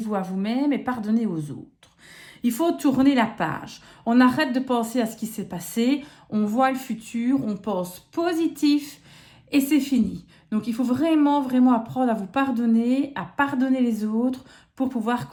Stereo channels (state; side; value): identical; both; correlation 1.00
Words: à vous-même et pardonnez aux autres. Il faut tourner la page. On arrête de penser à ce qui s'est passé. On voit le futur, on pense positif et c'est fini. Donc, il faut vraiment, vraiment apprendre à vous pardonner, à pardonner les autres pour pouvoir